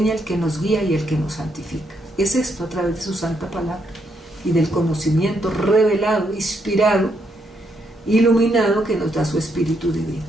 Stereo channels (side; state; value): both; normal; correlation 0.77